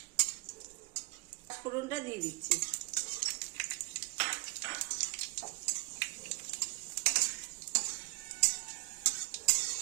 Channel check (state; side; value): quieter; left; 27.2 dB